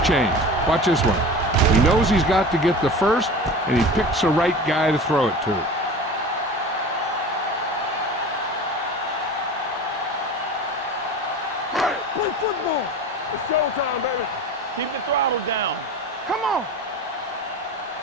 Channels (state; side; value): normal; both; correlation 0.34